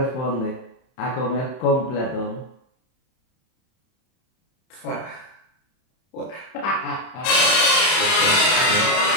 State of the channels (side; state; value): right; late; 31 ms